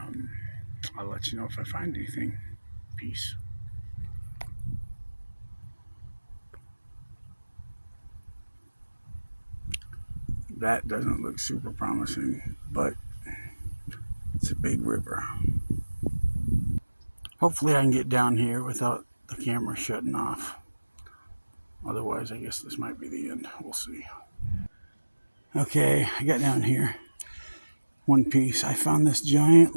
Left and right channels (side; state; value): both; inverted; correlation -1.00